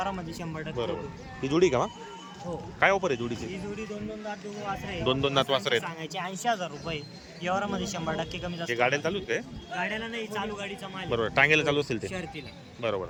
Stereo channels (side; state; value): both; identical; correlation 1.00